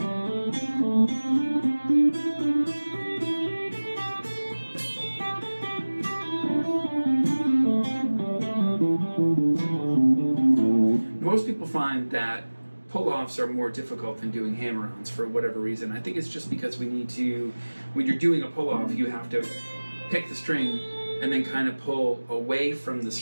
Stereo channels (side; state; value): both; inverted; correlation -1.00